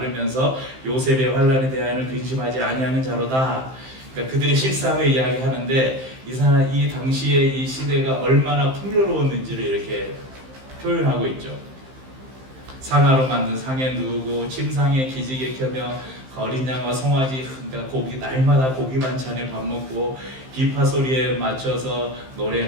요셉의 환난에 대하여는 근심하지 아니하는 자로다. 그러니까 그들의 실상을 이야기하는데 이 당시에 이 시대가 얼마나 풍요로웠는지를 이렇게 표현하고 있죠. 상아로 만든 상에 누우고 침상에 기지개 켜며 어린 양과 송아지, 그러니까 고기 날마다 고기 반찬에 밥 먹고 비파 소리에 맞춰서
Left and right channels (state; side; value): late; left; 15 ms